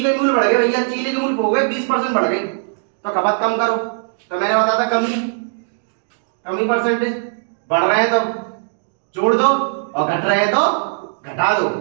मूल्य बढ़ गए भैया, चीनी के मूल्य हो गए 20% बढ़ गए, तो खपत कम करो। तो मैंने बताया था कमी परसेंटेज। बढ़ रहे हैं तो जोड़ दो, और घट रहे हैं तो घटा दो,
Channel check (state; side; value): silent; left; digital silence